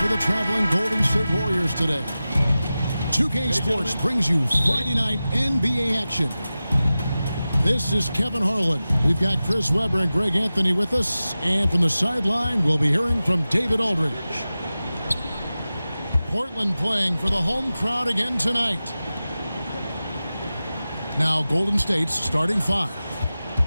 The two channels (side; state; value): both; inverted; correlation -0.95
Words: the traveling Golden State Warriors today. 2K Sports brings you Friday night NBA action. This is Kevin Harlan. We've got Chris Webber and Greg Anthony with us. And from the sideline, we'll be hearing from David Aldridge. Portland playing for the home crowd again tonight. Now Golden State's starting five.